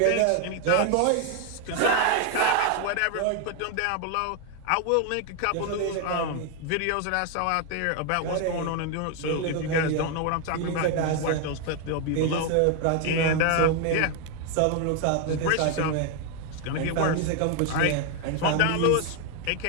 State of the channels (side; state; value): both; different; correlation 0.01